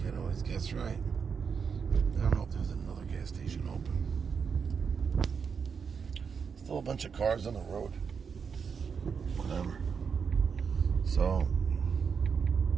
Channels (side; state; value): left; quieter; 6.2 dB